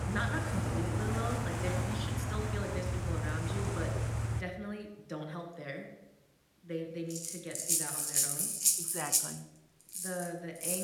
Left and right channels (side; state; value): both; identical; correlation 1.00